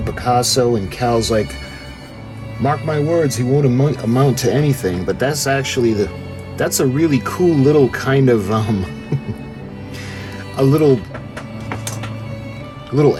Picasso, and Cal's like, mark my words, he won't amount to anything. But that's actually that's a really cool little kind of a little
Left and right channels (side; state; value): both; identical; correlation 1.00